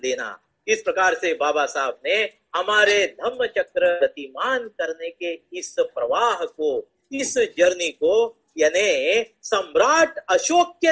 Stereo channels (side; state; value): both; identical; correlation 1.00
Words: इस प्रकार से बाबा साहब ने हमारे धम्म चक्र गतिमान करने के इस प्रवाह को, इस जर्नी को यानी सम्राट अशोक